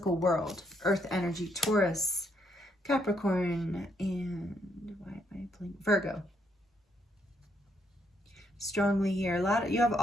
world. Earth energy, Taurus, Capricorn, and Virgo. Strongly here. You have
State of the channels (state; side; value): normal; both; correlation 0.74